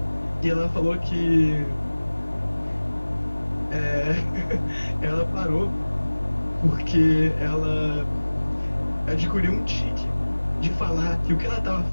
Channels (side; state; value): both; inverted; correlation -1.00